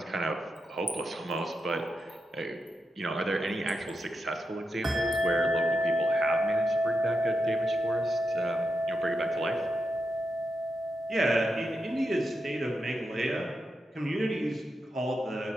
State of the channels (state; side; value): normal; both; correlation 0.86